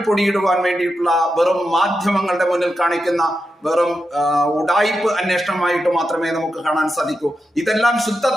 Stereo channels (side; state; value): both; normal; correlation 0.88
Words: പൊടിയിടുവാൻ വേണ്ടിയിട്ടുള്ള വെറും മാധ്യമങ്ങളുടെ മുന്നിൽ കാണിക്കുന്ന വെറും ഉഡായിപ്പ് അന്വേഷണമായിട്ട് മാത്രമേ നമുക്ക് കാണാൻ സാധിക്കൂ. ഇതെല്ലാം ശുദ്ധ